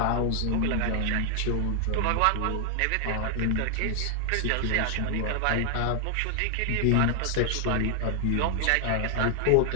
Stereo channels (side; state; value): both; different; correlation 0.00